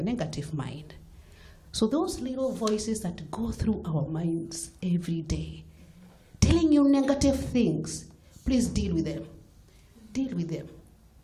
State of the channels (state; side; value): identical; both; correlation 1.00